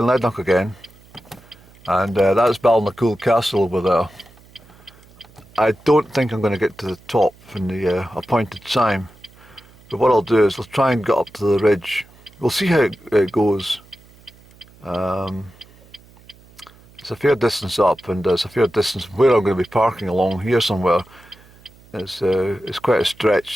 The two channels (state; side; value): noise; right; hum, 26 dB below the sound